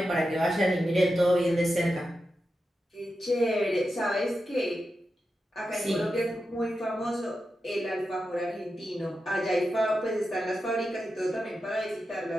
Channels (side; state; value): both; normal; correlation 0.90